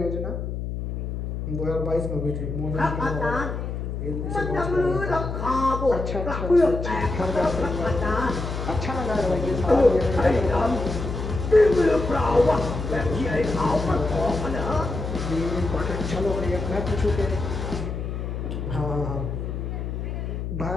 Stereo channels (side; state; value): left; noise; hum, 4 dB below the sound